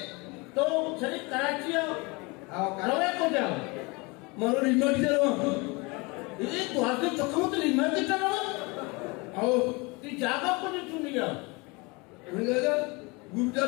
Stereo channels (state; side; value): quieter; right; 26.9 dB